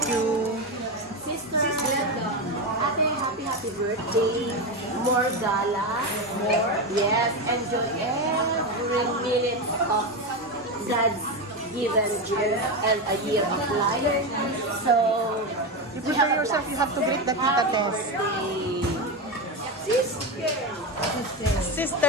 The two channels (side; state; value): both; normal; correlation 0.14